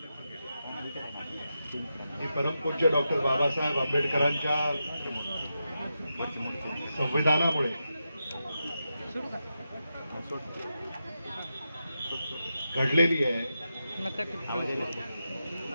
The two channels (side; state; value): both; inverted; correlation -0.88